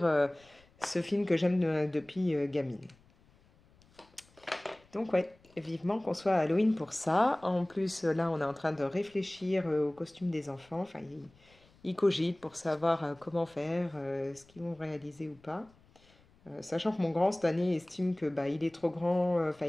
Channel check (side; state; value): left; noise; rumble, 29 dB below the sound